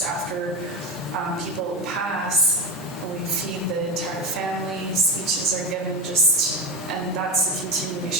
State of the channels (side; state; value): both; normal; correlation 0.17